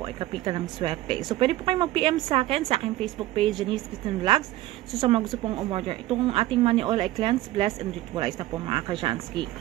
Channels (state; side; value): quieter; left; 16.0 dB